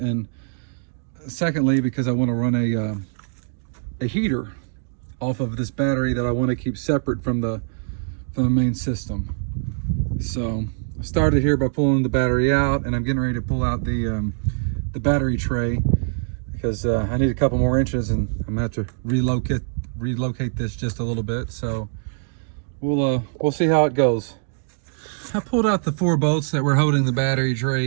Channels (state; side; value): silent; left; 63 dB below the other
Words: secondly, because I want to run a heater off of this battery that I want to keep separate from the main system. So I started here by pulling the battery out, and I'm getting ready to pull out the battery tray because I need a couple more inches, and I'm gonna have to relocate this just a little bit. So we'll see how it goes. I pulled out the 4 bolts that were holding the battery